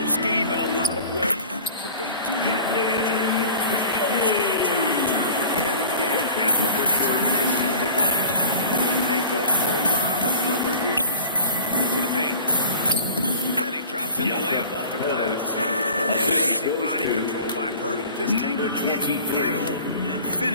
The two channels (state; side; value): inverted; both; correlation -0.41